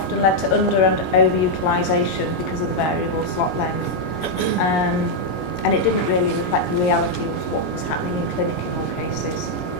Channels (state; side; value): late; right; 22 ms